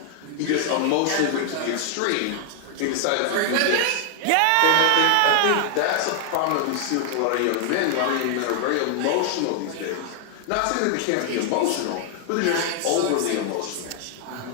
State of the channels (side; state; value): both; different; correlation 0.00